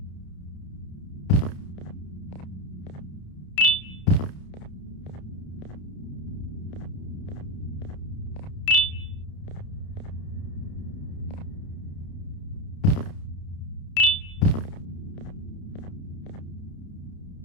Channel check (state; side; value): late; right; 30 ms